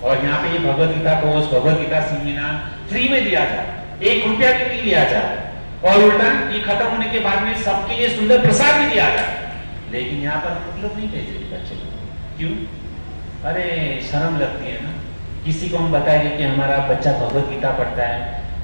और यहाँ पे ये Bhagavad Gita course, Bhagavad Gita seminar free में दिया जाए, 1 रुपया भी नहीं लिया जाए, और उल्टा ये खत्म होने के बाद में सबके लिए सुंदर प्रसाद भी दिया जाए। लेकिन यहाँ पर हम लोग नहीं भेजे बच्चे को। क्यों? अरे शर्म लगती है ना। किसी को हम बताएंगे कि हमारा बच्चा भगवत गीता पढ़ता है,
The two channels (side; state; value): both; inverted; correlation -1.00